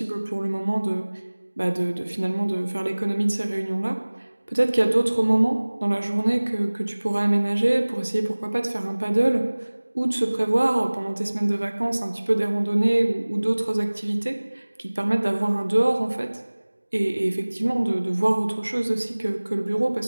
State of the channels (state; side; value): inverted; both; correlation -1.00